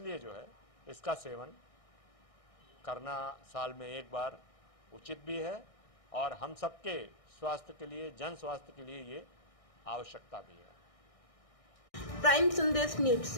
जो है इसका सेवन करना साल में एक बार उचित भी है और हम सबके स्वास्थ्य के लिए, जन स्वास्थ्य के लिए ये आवश्यकता भी है। प्राइम संदेश न्यूज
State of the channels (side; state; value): right; late; 1.6 ms